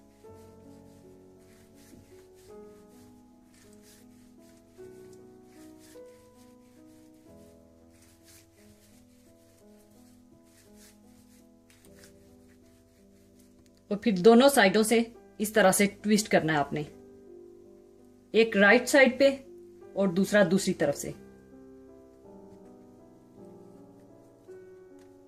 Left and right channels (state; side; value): identical; both; correlation 1.00